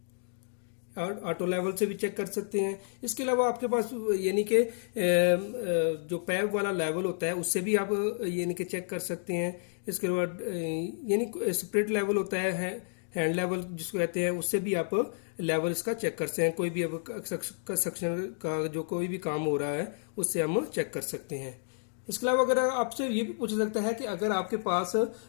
और ऑटो लेवल से भी चेक कर सकते हैं। इसके अलावा आपके पास यानी कि जो पैप वाला लेवल होता है उससे भी आप यानी कि चेक कर सकते हैं। इसके बाद यानी स्प्रिट लेवल होता है, हैंड लेवल जिसको कहते हैं, उससे भी आप लेवल इसका चेक कर सकते हैं। कोई भी अब कंस्ट्रक्शन का जो कोई भी काम हो रहा है उससे हम चेक कर सकते हैं। इसके अलावा अगर आपसे ये भी पूछा सकता है कि अगर आपके पास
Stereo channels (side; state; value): right; silent; digital silence